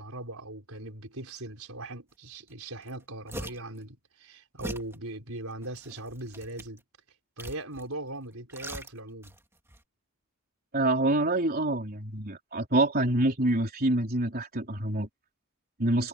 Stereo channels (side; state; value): both; normal; correlation 0.33